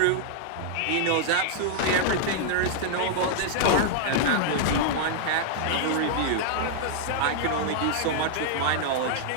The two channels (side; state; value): both; different; correlation -0.01